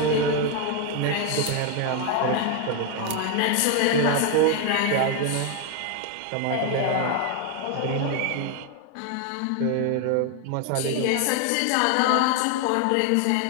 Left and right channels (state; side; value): different; both; correlation 0.01